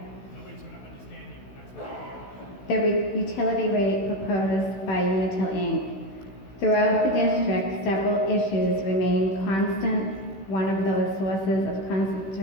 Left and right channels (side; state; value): right; late; 16 ms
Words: The utility rate proposed by Unitil Inc. Throughout the district, several issues remain constant. One of those sources of